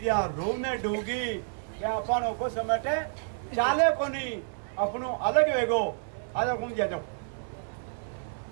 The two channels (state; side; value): silent; left; 58 dB below the other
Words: रोने डूगी क्या अपन को समेटे चाले को नहीं अपनो अलग वेगो। आ जाओ घूम जाओ।